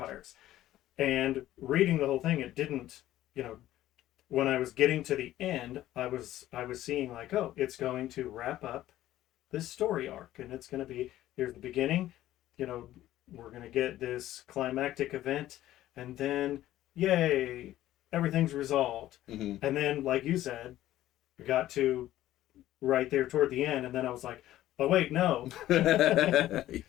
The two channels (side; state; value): right; quieter; 14.1 dB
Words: And reading the whole thing, it didn't, when I was getting to the end, I was seeing it's going to wrap up this story arc, and it's going to be, here's the beginning, we're going to get this climactic event, and then yay, everything's resolved. Mm-hmm. And then, like you said, we got to right there toward the end, and then I was like, oh wait, no.